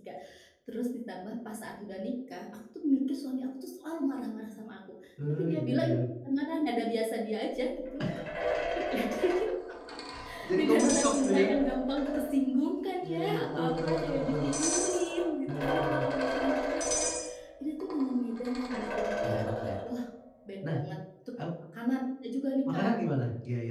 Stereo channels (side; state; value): both; identical; correlation 1.00